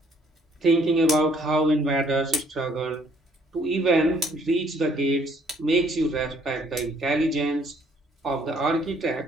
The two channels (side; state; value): both; normal; correlation 0.64